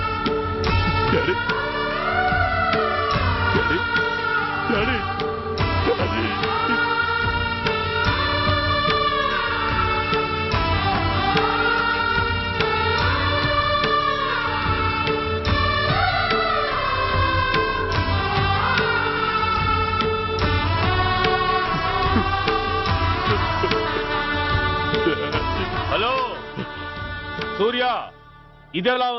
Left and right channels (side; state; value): both; identical; correlation 1.00